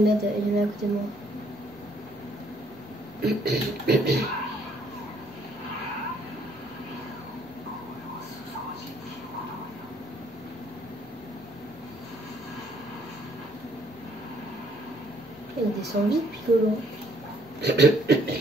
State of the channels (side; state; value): both; normal; correlation 0.66